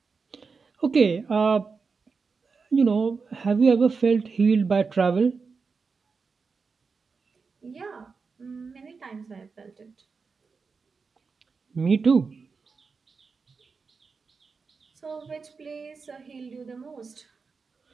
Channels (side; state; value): left; quieter; 4.9 dB